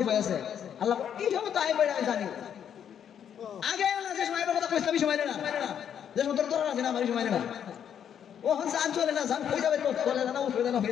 উপায় আছে? আল্লাহ এই সময় তো আইবার জানি, আগে না যে সময় আইবার কথা কইছিলাম এই সময় না, যে সময় তোর আছে না আমার এই সময় না, ও হন জান চলে না, জান কই যাবে? তো চলে না, উঠবে না,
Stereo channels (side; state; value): right; quieter; 8.8 dB